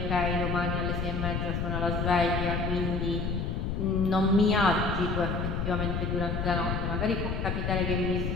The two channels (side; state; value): left; noise; rumble, 1 dB below the sound